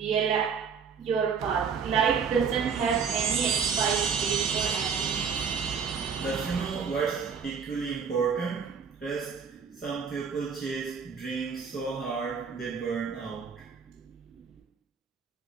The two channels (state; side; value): quieter; left; 6.2 dB